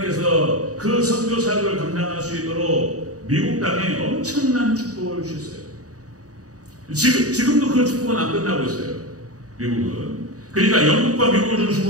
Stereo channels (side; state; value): left; late; 0.66 ms